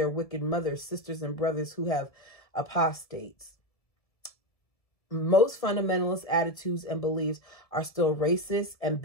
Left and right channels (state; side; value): late; right; 1.7 ms